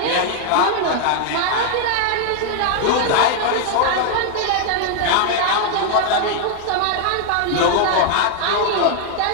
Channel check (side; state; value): both; different; correlation 0.00